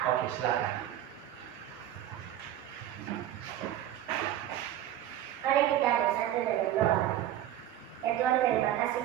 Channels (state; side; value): quieter; left; 12.1 dB